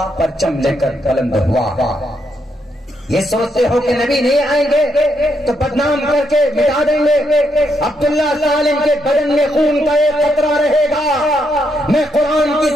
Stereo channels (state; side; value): normal; both; correlation 0.78